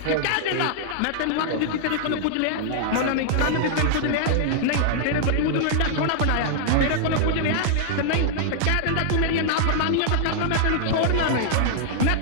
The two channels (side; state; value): both; different; correlation -0.01